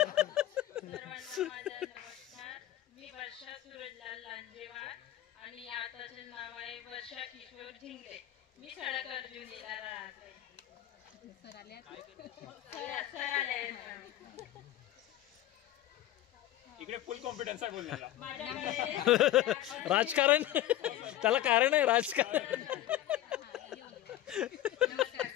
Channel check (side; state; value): right; quieter; 13.8 dB